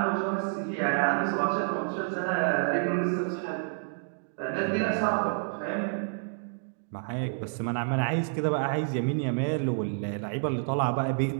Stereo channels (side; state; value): left; silent; 59 dB below the other